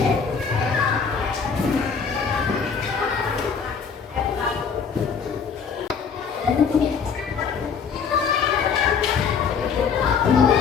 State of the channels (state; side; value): quieter; right; 6.2 dB